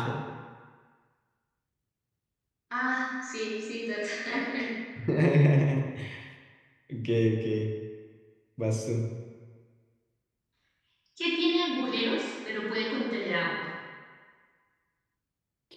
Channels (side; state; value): both; identical; correlation 1.00